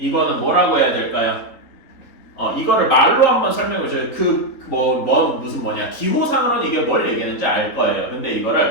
뭐라고 해야 될까요? 이거를 말로 한번 설명해 줘요. 무슨 기호상으로는 이게 뭘 얘기하는지 알 거예요. 근데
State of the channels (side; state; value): right; late; 3.8 ms